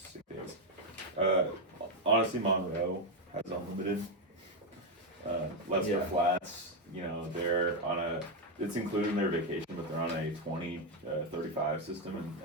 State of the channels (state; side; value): normal; both; correlation 0.04